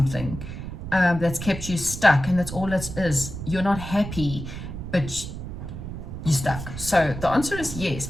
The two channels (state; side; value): noise; right; rumble, 8 dB below the sound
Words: that's kept you stuck, and that's all it is. You're not happy, but you're stuck. So the answer is yes,